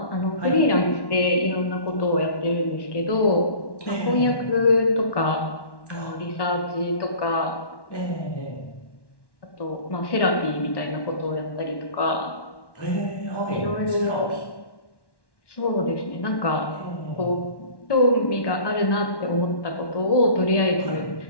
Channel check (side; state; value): right; late; 1.1 ms